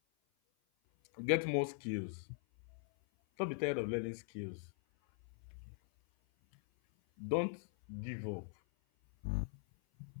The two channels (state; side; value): silent; right; 50 dB below the other